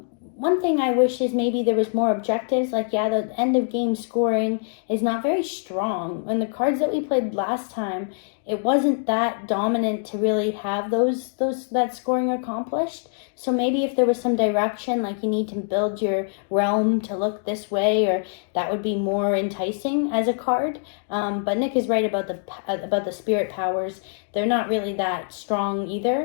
One thing I wish is maybe there was more objectives. Like, the end of game scoring is not very strong. And the cards that we played last time, it wasn't that dominant to really have that scoring accomplished. So maybe if there was some direction, like you need to build your realm to look this way, or that would be more enticing as a card. But Nick is right about the spirit powers. They're not really that strong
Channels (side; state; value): right; silent; 63 dB below the other